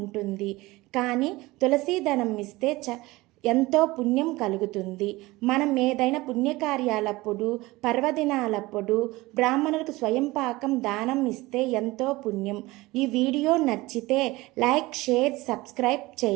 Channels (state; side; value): quieter; left; 20.4 dB